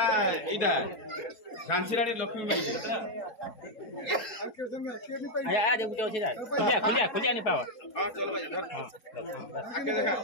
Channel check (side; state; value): right; late; 4.7 ms